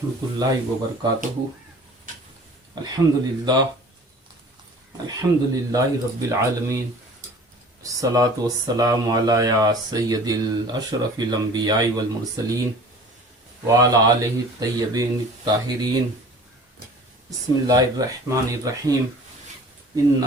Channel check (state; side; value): normal; both; correlation 0.45